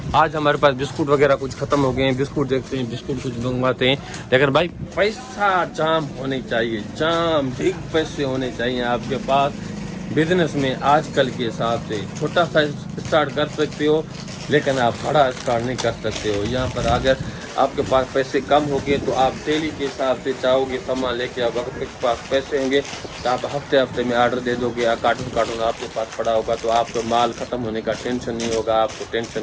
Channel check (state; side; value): identical; both; correlation 1.00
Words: आज हमारे पास बिस्कुट वगैरह कुछ ख़त्म हो गए हैं, बिस्कुट देखते हैं, बिस्कुट कुछ मंगवाते हैं। लेकिन भाई पैसा जाम होने चाहिए, जाम ठीक पैसे होने चाहिए आपके पास। बिजनेस में आजकल के हिसाब से छोटा सा स्टार्ट कर सकते हो, लेकिन आप बड़ा स्टार्ट नहीं कर सकते हो। यहाँ पर अगर आपके पास पैसे कम होंगे तो आप डेली के हिसाब से चाहोगे सामान लेके, अब आपके पास पैसे होंगे तो आप हफ्ते हफ्ते में ऑर्डर दे दोगे, या कार्टून आपके पास पड़ा होगा तो आपको माल ख़त्म होने का टेंशन नहीं होगा, आपको टेंशन